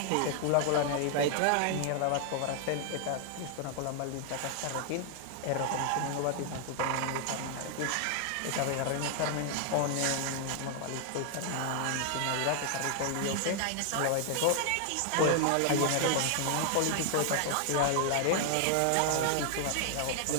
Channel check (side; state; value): both; different; correlation 0.00